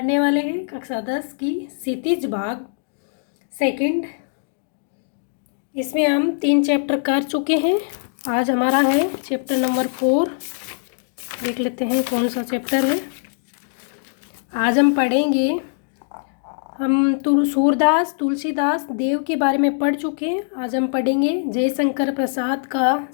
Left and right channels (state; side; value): silent; right; digital silence